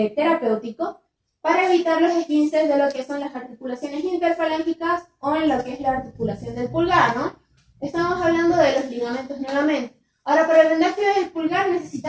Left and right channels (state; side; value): identical; both; correlation 1.00